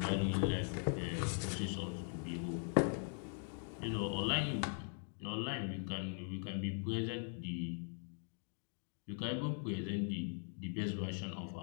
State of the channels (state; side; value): silent; right; 50 dB below the other